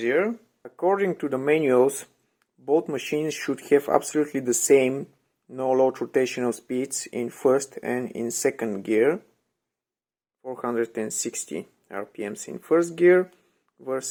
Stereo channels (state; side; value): identical; both; correlation 1.00